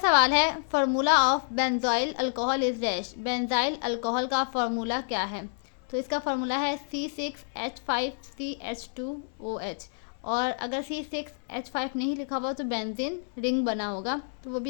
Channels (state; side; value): silent; right; 59 dB below the other